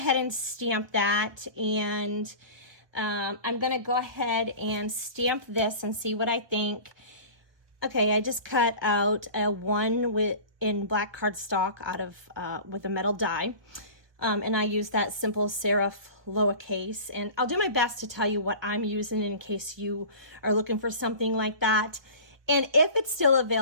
and stamp that, and I'm going to go ahead and stamp this and see what I think. Okay, I just cut out a 1 in black cardstock out of with a metal die. And I use that simple serif lowercase, and I'll do my best to tell you what I'm using in case you are looking for something like that. And if it's still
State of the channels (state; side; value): late; left; 1.2 ms